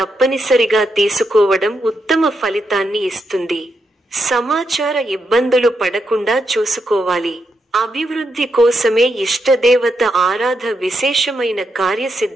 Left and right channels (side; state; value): both; normal; correlation 0.82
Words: తీసుకోవడం ఉత్తమ ఫలితాన్ని ఇస్తుంది. సమాచార ఇబ్బందులు పడకుండా చూసుకోవాలి. అభివృద్ధి కోసమే ఇష్టదేవత ఆరాధ విశేషమైన